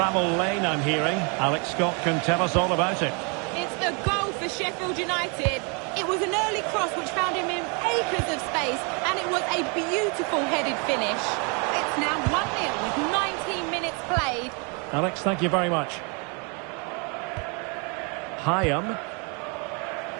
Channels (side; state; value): left; quieter; 34.2 dB